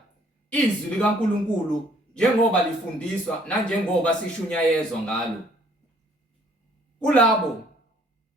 izwi likaNkulunkulu njengoba lifundiswa nanjengoba sishunyayezwa ngalo. Kulabo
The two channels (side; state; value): both; normal; correlation 0.60